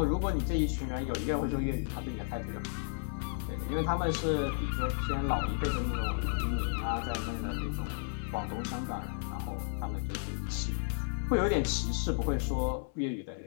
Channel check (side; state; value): right; silent; 56 dB below the other